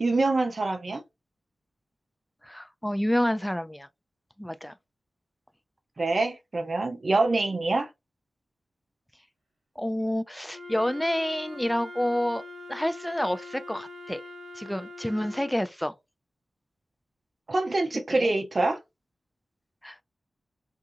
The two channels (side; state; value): both; normal; correlation 0.97